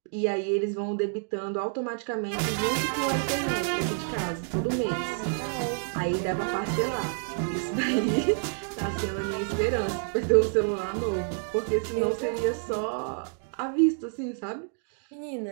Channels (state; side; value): silent; left; 59 dB below the other